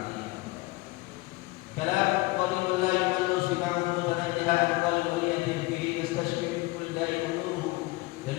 Kalam qalilun la yumallu sima'uhu tanajjaha qalbun yatim fihi yastashfi min kulli da'in nuruhu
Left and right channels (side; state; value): right; quieter; 21.8 dB